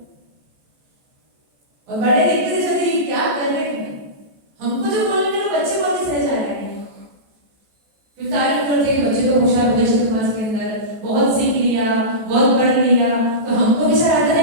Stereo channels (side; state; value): left; late; 14 ms